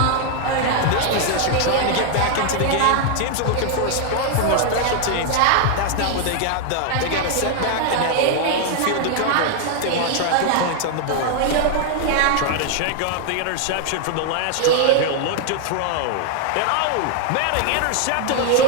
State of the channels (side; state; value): both; different; correlation 0.00